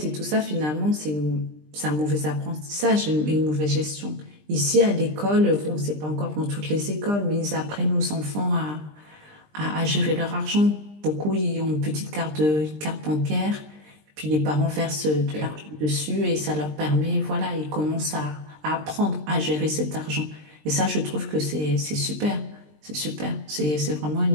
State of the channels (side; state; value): left; late; 20 ms